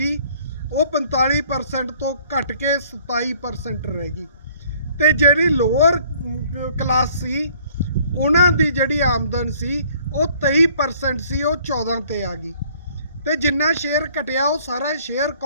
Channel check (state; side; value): inverted; both; correlation -0.58